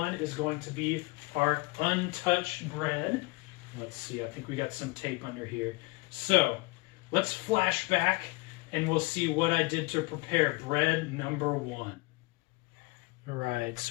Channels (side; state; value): right; quieter; 25.8 dB